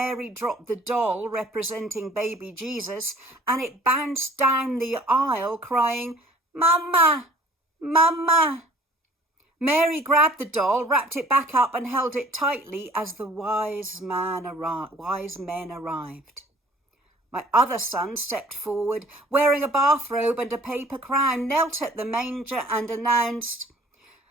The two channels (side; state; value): both; normal; correlation 0.52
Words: dropped the doll representing baby Jesus, and it bounced down the aisle crying, "Mama, Mama." Mary grabbed the doll, wrapped it back up and held it tightly as the wise men arrived. My other son stepped forward, wearing a bathrobe and a paper crown, knelt at the manger and announced,